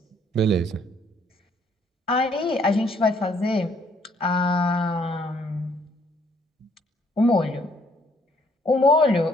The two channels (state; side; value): normal; both; correlation 0.65